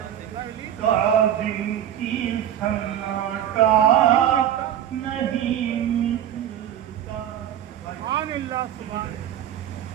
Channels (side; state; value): left; quieter; 10.7 dB